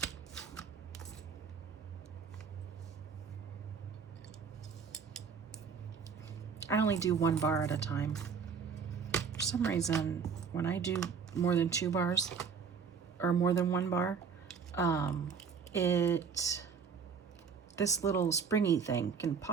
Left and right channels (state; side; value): quieter; left; 6.1 dB